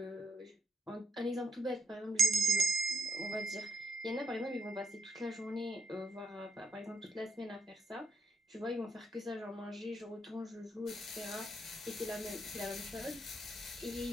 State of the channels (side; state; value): both; normal; correlation 0.80